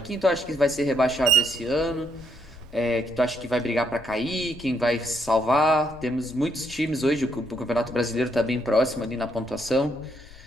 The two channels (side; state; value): left; noise; rumble, 20 dB below the sound